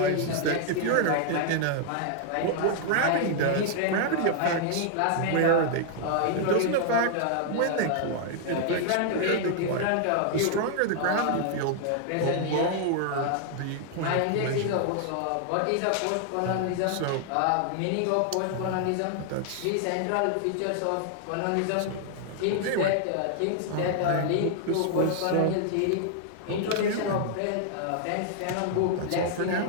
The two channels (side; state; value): both; different; correlation 0.00